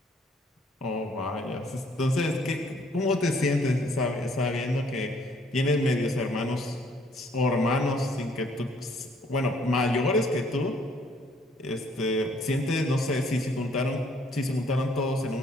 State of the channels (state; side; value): normal; both; correlation 0.64